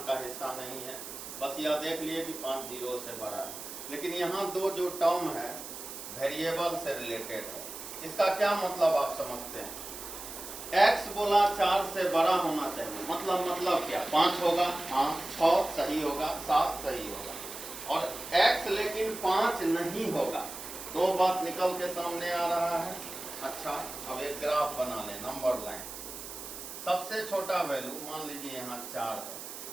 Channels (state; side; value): noise; right; hiss, 10 dB below the sound